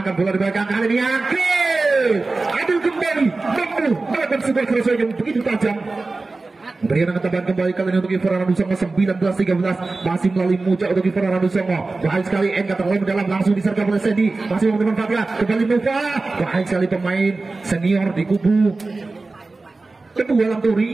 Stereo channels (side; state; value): left; quieter; 3.5 dB